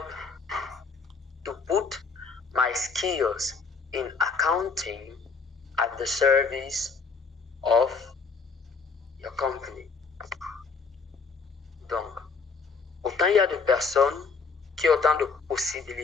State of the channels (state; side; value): quieter; right; 4.8 dB